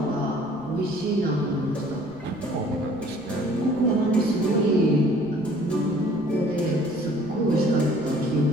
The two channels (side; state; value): left; noise; rumble, 23 dB below the sound